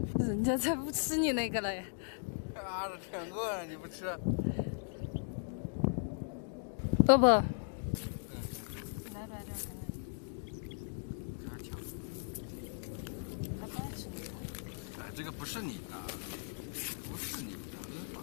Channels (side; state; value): right; silent; digital silence